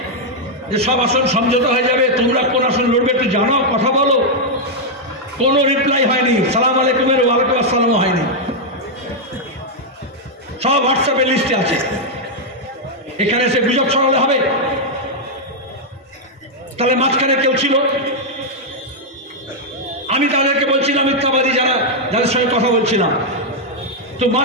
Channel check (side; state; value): both; normal; correlation -0.02